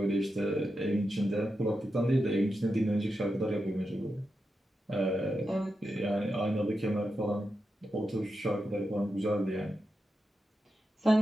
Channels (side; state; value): both; normal; correlation 0.88